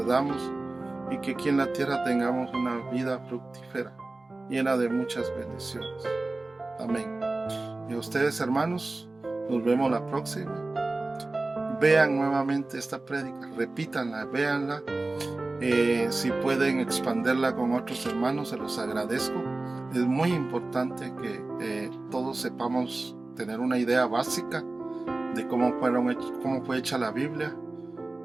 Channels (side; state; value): left; quieter; 3.1 dB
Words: y que aquí en la tierra tengamos una vida fructífera, llena de muchas bendiciones. Amén. Y a ustedes, hermanos, nos vemos la próxima. Vean nuevamente esta prédica, repítanla, véanla. Si pueden expandirla con otros hermanos, se los agradezco. Es muy importante que todos sepamos tener una idea básica de cómo fue hecha la Biblia,